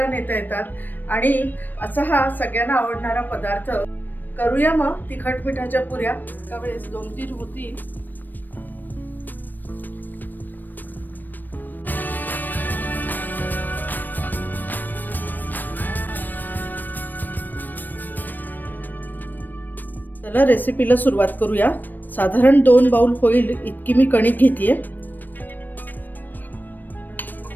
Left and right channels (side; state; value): right; late; 0.090 ms